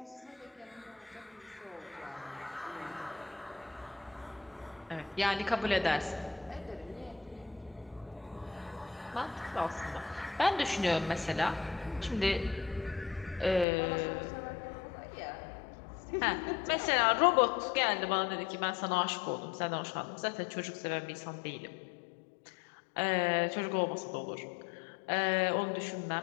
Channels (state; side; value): drops out; right; at 13.7 s